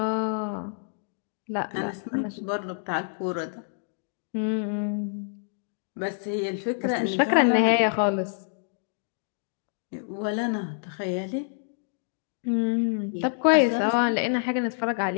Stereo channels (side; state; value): right; silent; digital silence